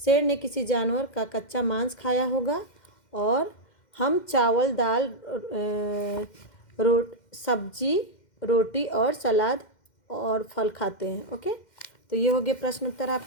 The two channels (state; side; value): late; right; 2.1 ms